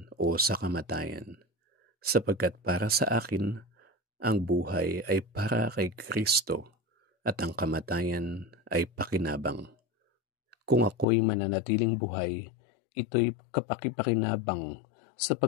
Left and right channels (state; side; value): drops out; right; at 11.1 s